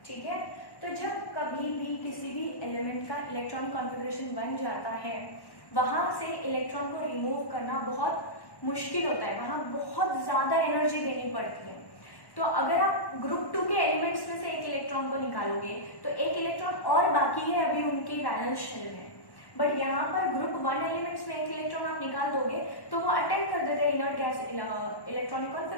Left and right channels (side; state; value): right; late; 1.1 ms